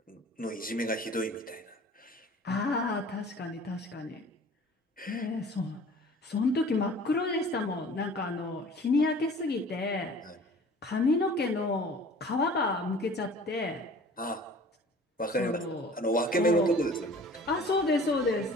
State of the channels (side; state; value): both; normal; correlation 0.46